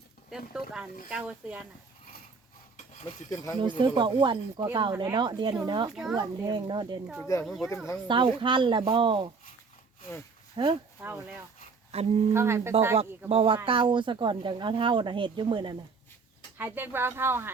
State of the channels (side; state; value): left; quieter; 4.7 dB